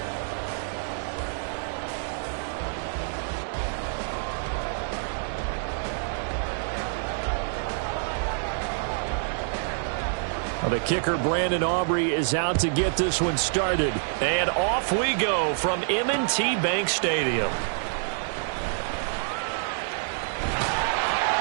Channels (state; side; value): silent; left; digital silence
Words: The kicker, Brandon Aubrey, is out to get this one started. And off we go from M&T Bank Stadium.